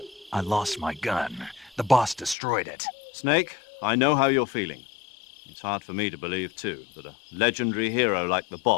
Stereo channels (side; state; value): right; drops out; at 2.4 s